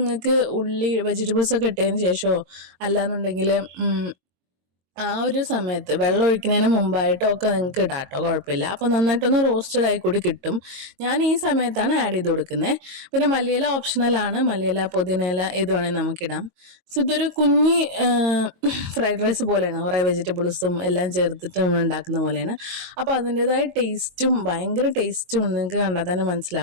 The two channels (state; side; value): late; left; 22 ms